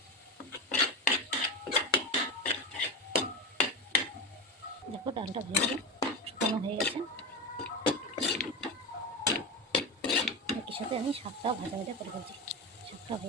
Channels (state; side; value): normal; both; correlation 0.19